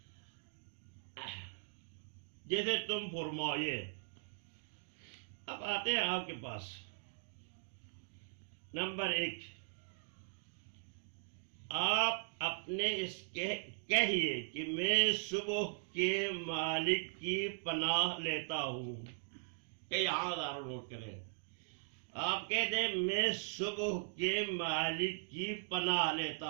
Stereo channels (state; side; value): silent; left; digital silence